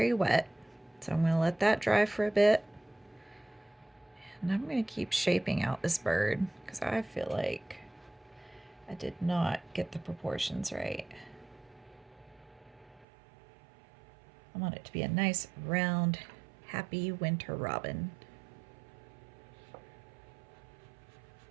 wet. So I'm going to let that dry for a bit. And I'm going to keep shaping out this bird because I feel like I did not get the proportions right. I want it to be a nice, round, happy winter robin.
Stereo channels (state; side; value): drops out; left; at 13.1 s